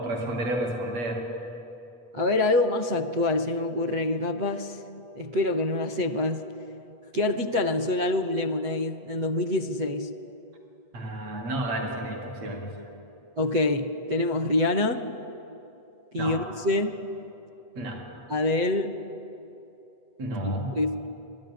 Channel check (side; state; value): left; late; 8.2 ms